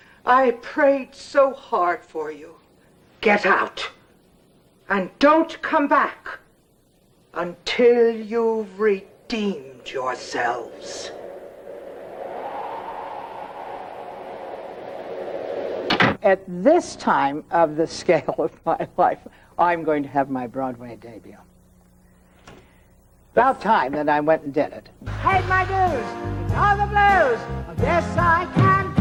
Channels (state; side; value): identical; both; correlation 1.00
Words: I prayed so hard for you. Get out. And don't come back until you've redeemed yourselves. At this time of the scale of my life, I'm going to have my Broadway debut. About time that I went and did it. Paid my dues, all the blues. Of this I can